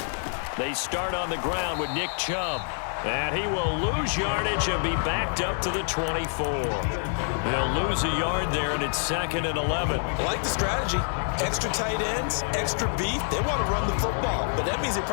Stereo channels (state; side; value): silent; right; 60 dB below the other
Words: They start on the ground with Nick Chubb. And he will lose yardage and be backed up to the 24. He'll lose a yard there, and it's 2nd and 11. I like the strategy. Extra tight ends, extra beef. They want to run the football, but that means they